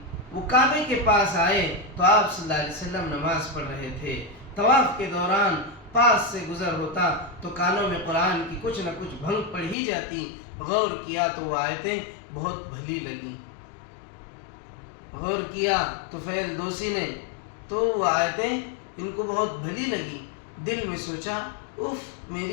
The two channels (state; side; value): drops out; right; at 9.8 s